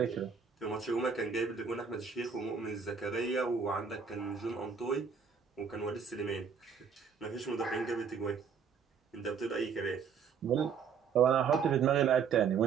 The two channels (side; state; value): left; quieter; 6.4 dB